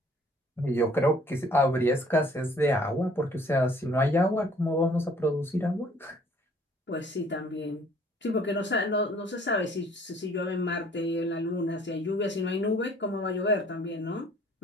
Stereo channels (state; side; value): normal; both; correlation 0.57